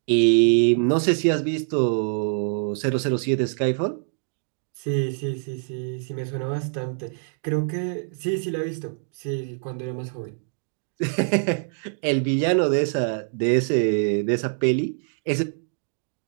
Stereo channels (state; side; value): silent; left; digital silence